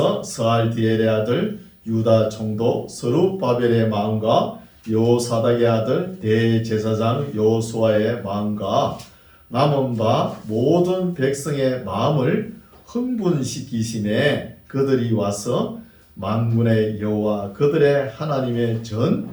스알디엘의 아들 유다 총독 스룹바벨의 마음과 여호사닥의 아들 대제사장 여호수아의 마음과 남은 바 모든 백성의 마음을 흥분시키심에 그들이 와서 만군의 여호와 그들의 하나님의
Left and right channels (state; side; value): identical; both; correlation 1.00